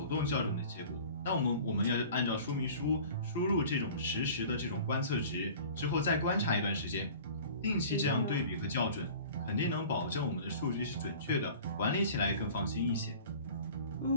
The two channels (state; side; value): inverted; both; correlation -0.43